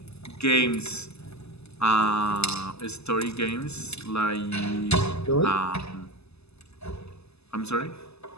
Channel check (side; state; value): right; late; 0.79 ms